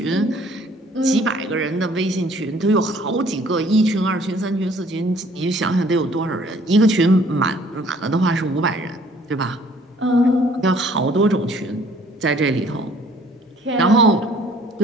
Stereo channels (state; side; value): normal; both; correlation 0.57